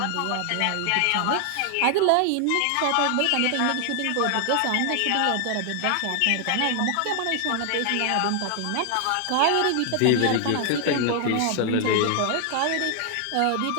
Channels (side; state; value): both; different; correlation 0.00